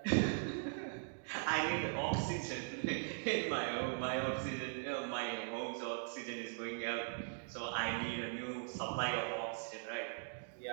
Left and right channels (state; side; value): silent; left; digital silence